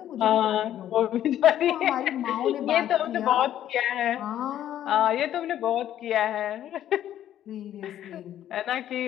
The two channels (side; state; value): right; quieter; 11.5 dB